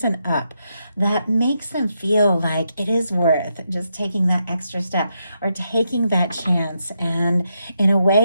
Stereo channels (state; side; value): inverted; both; correlation -0.82